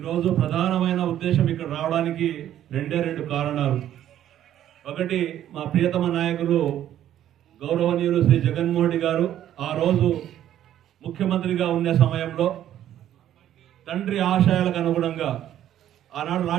ప్రధానమైన ఉద్దేశం ఇక్కడ రావడానికి రెండు కారణాలు. ఒకటి, మా ప్రియతమ నాయకులు గౌరవనీయులు శ్రీ జగన్మోహన్ రెడ్డి గారు ఆ రోజు ముఖ్యమంత్రిగా ఉండే సమయంలో తండ్రి ఆశయాలకు అనుగుణంగా ఆనాడు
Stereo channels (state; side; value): quieter; left; 11.5 dB